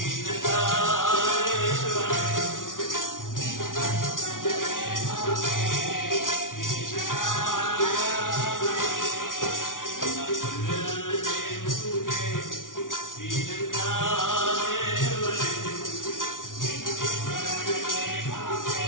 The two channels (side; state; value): right; late; 0.88 ms